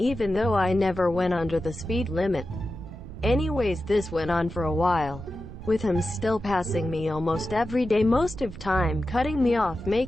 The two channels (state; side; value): noise; right; rumble, 13 dB below the sound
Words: even though I never went under the speed limit. Anyways, this went on for a while, with him still passing me almost every day, most of time cutting me off,